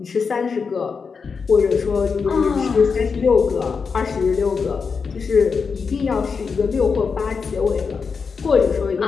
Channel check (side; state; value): right; quieter; 5.4 dB